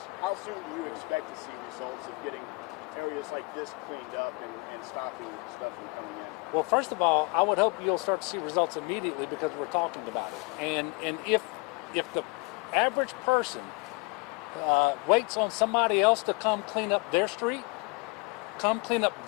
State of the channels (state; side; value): quieter; right; 29.1 dB